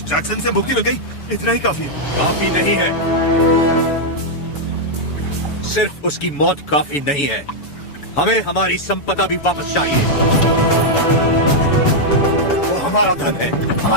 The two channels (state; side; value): late; right; 7.0 ms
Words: जैक्सन से मुक्ति मिल गई, इतना ही काफी है। काफी नहीं है, सिर्फ उसकी मौत काफी नहीं है, हमें हमारी संपदा भी वापस चाहिए। वो हमारा धन है,